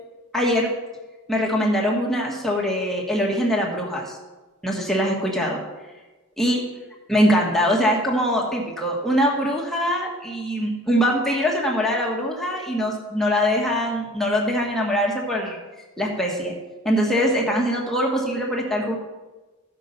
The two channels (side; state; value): both; normal; correlation 0.52